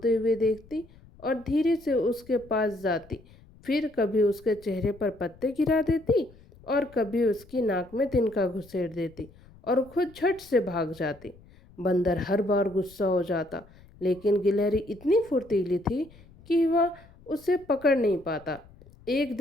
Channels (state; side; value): noise; left; rumble, 25 dB below the sound